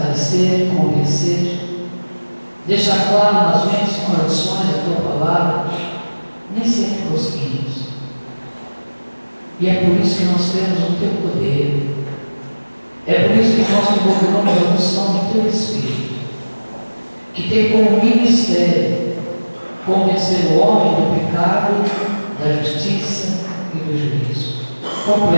convencer, deixar claro nas mentes e corações a tua palavra, nem sempre conseguimos. E é por isso que nós temos o teu poder. É por isso que nós desenvolvemos a unção do teu Espírito, que tem como ministério convencer o homem do pecado, da justiça e do juízo.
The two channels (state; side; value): inverted; both; correlation -1.00